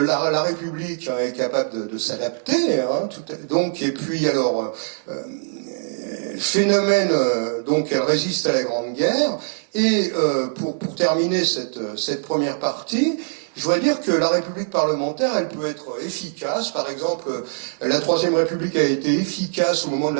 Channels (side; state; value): left; silent; digital silence